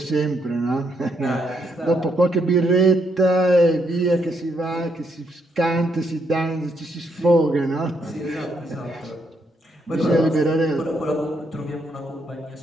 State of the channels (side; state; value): both; normal; correlation 0.76